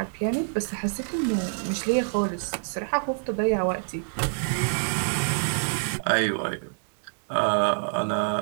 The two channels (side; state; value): left; silent; digital silence